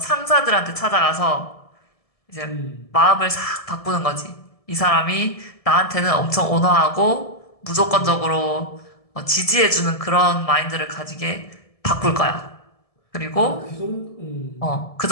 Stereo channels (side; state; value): right; late; 1.7 ms